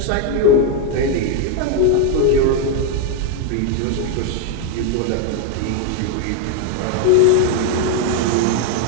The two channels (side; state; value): both; different; correlation 0.01